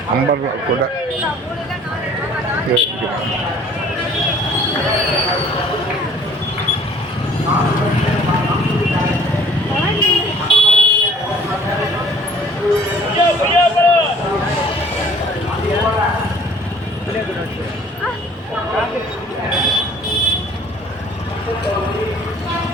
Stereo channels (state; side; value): normal; both; correlation 0.53